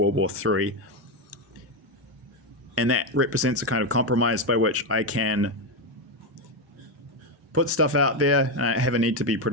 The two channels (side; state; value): both; normal; correlation 0.09